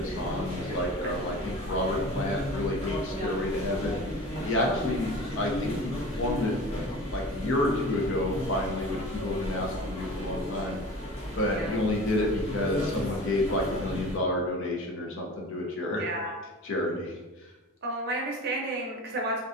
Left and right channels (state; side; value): normal; both; correlation 0.37